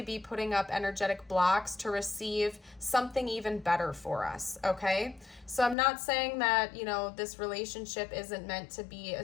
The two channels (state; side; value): drops out; right; at 5.8 s